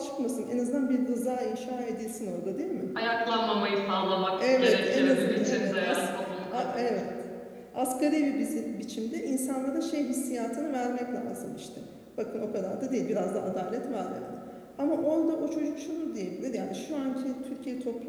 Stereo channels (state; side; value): identical; both; correlation 1.00